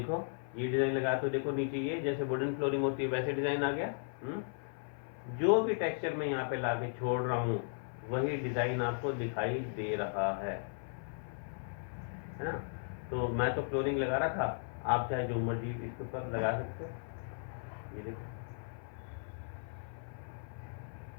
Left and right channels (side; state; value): right; silent; 54 dB below the other